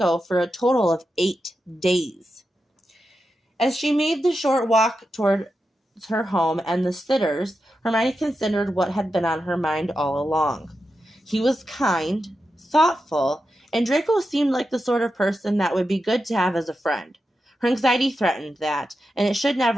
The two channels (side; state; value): both; normal; correlation 0.89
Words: for a total of 8 days. As she made the short walk towards her home and the sitters, Hermione considered what had been on her mind all along. He was kind, thoughtful, and Draco seemed like the sort of person that would be good to have as a friend. Her anxiety threatened that, and it should